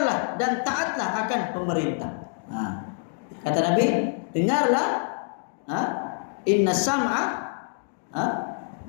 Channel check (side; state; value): right; silent; 58 dB below the other